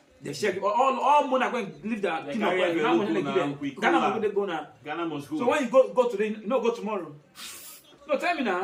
They share all money are going to leave their kingdom. Ghana must go now. Ghana must go. So when you go today, you no go tomorrow. No, tell me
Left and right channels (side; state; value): both; identical; correlation 1.00